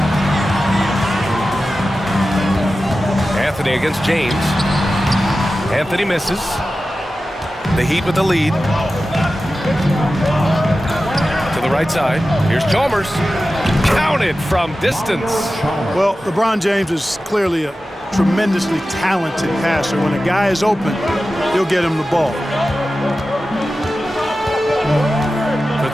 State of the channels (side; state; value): both; normal; correlation 0.94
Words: Anthony against James. Anthony misses. The Heat with the lead. To the right side. Here's Chalmers. Counted from distance. Well, LeBron James is clearly a tremendously talented passer. When a guy is open, he'll get him the ball. For